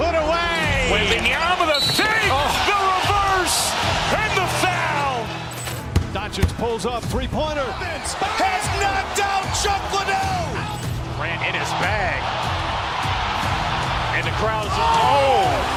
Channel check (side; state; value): both; identical; correlation 1.00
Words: away. Wembanyama the save, the reverse, and the foul. Doncic pulls up, three-pointer. Has knocked out Chuck Liddell. Grant in his bag. And the crowd's, oh,